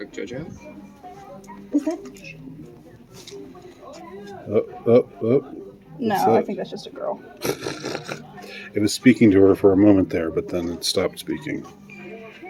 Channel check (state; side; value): identical; both; correlation 1.00